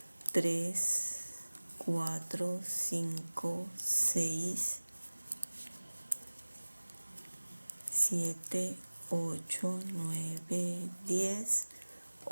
3, 4, 5, 6, 7, 8, 9, 10,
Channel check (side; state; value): both; inverted; correlation -1.00